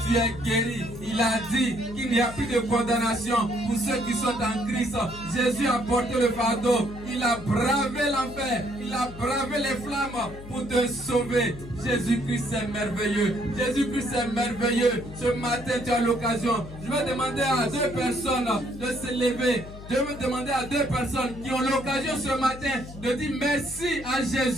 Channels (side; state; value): left; noise; hum, 14 dB below the sound